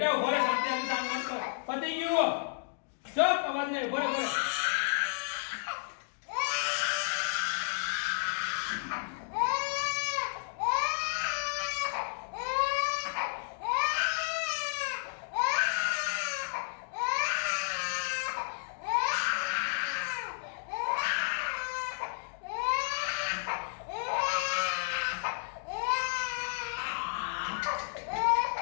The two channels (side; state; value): right; silent; digital silence